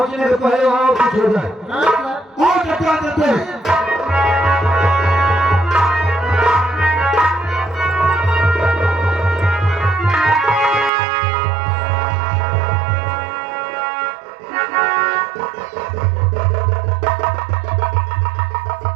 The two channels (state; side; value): drops out; left; at 10.9 s